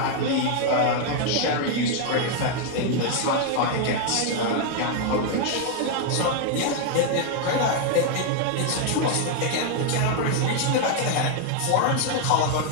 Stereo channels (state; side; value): different; both; correlation 0.00